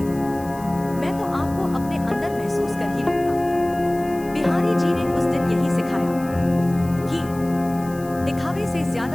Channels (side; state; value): left; noise; hiss, 21 dB below the sound